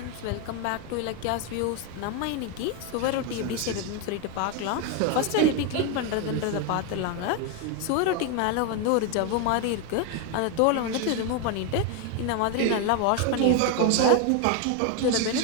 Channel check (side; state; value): both; different; correlation 0.01